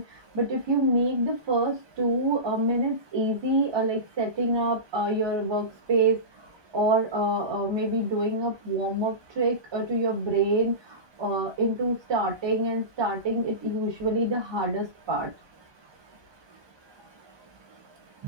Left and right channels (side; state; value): left; late; 1.2 ms